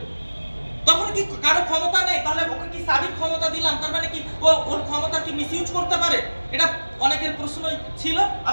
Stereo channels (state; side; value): inverted; both; correlation -1.00